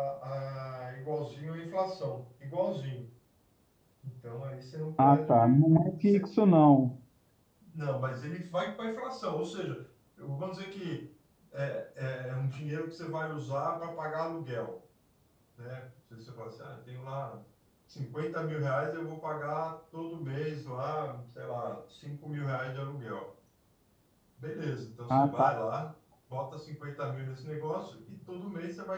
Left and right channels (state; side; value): identical; both; correlation 1.00